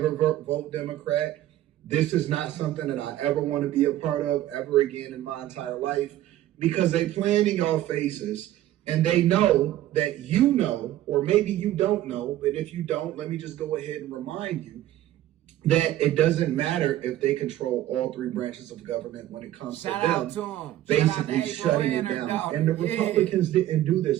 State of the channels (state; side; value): quieter; left; 13.6 dB